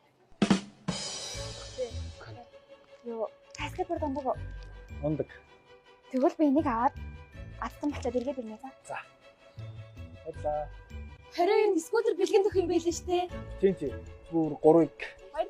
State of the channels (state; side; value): identical; both; correlation 1.00